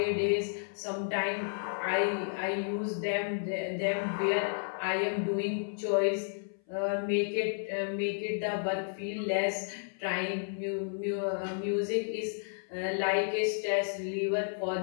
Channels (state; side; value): silent; right; 56 dB below the other